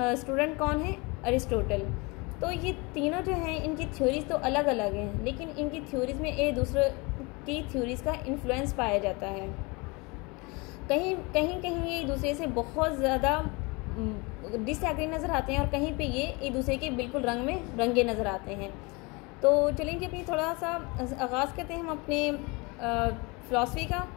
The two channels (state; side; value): quieter; right; 27.2 dB